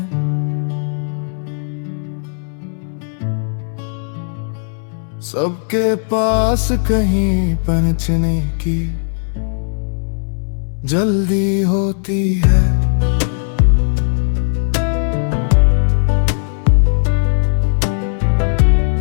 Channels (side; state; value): right; silent; 68 dB below the other